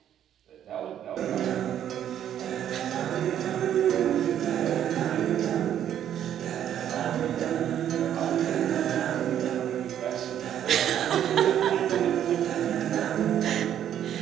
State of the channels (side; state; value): left; quieter; 10.3 dB